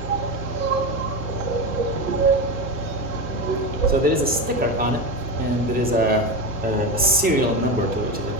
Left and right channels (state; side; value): normal; both; correlation 0.19